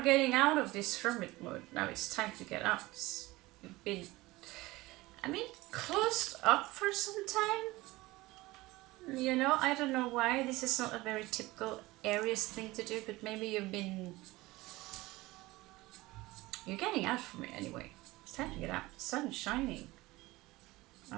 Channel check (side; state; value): left; quieter; 19.9 dB